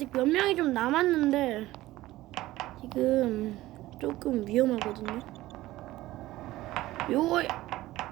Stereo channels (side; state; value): left; quieter; 16.8 dB